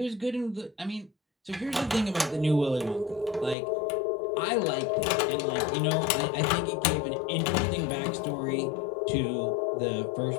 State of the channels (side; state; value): right; drops out; at 3.6 s